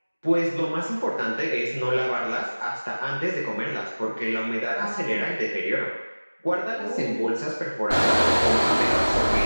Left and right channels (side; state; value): both; inverted; correlation -1.00